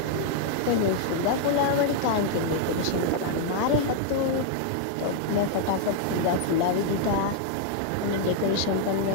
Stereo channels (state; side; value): different; both; correlation -0.01